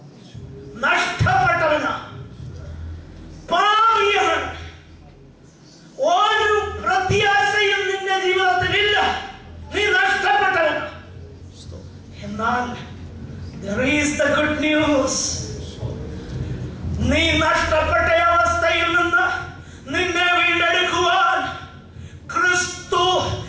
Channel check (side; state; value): both; identical; correlation 1.00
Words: നഷ്ടപ്പെട്ടവനാ, പാപിയാണ്. ഒരു പ്രത്യാശയും നിന്റെ ജീവിതത്തിലില്ല, നീ നഷ്ടപ്പെട്ടവനാ. എന്നാൽ there is the good news. നീ നഷ്ടപ്പെട്ട അവസ്ഥയിൽ നിന്ന് നിന്നെ വീണ്ടെടുക്കുവാൻ ക്രിസ്തു